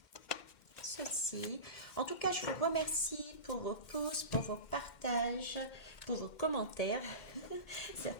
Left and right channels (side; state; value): right; late; 2.1 ms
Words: ceci. En tout cas, je vous remercie pour vos pouces, pour vos partages, pour vos commentaires.